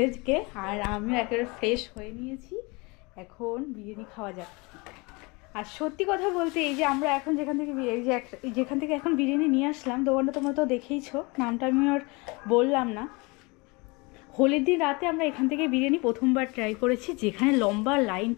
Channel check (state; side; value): quieter; right; 27.0 dB